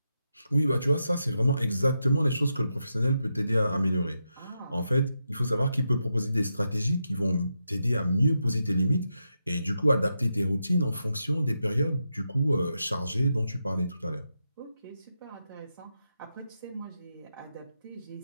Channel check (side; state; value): both; inverted; correlation -0.86